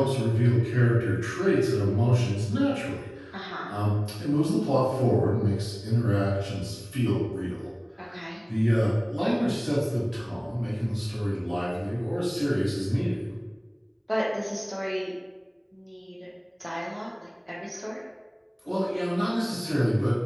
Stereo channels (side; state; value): both; identical; correlation 1.00